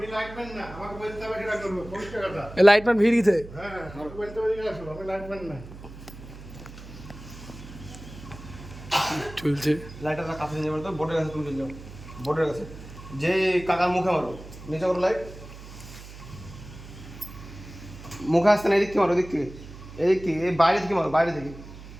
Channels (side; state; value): right; noise; hum, 15 dB below the sound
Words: লাইটম্যান না, আমাকে বলতে হবে কিনা করবো পরিষ্কার কথা। লাইটম্যান ভিড় গেছে। হ্যাঁ, আমাকে বলতে হবে কিনা আসো, আমি লাইটম্যান না। চলছে লাইটটা কাছে নিয়ে মারতো, বোর্ডের কাছে তুমি চলে যাও, বোর্ডের কাছে যে কাকার মুখে মারো, নিচে করো লাইট, মুখে আসতে না, এদিক থেকে মারো, এদিক থেকে, এদিক থেকে, এই বাইরে থেকে মারো, বাইরে থেকে।